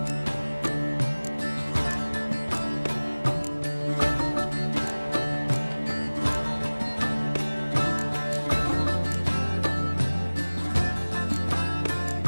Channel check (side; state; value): both; inverted; correlation -1.00